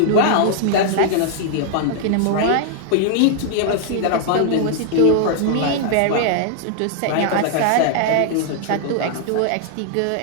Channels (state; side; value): different; both; correlation -0.01